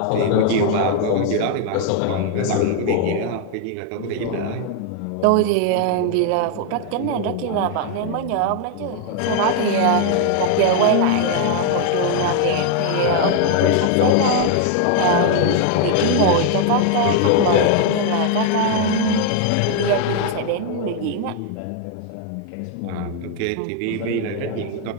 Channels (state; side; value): different; both; correlation 0.00